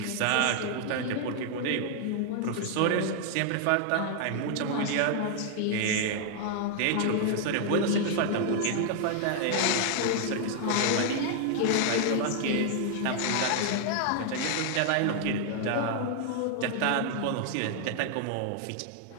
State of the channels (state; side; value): different; both; correlation 0.00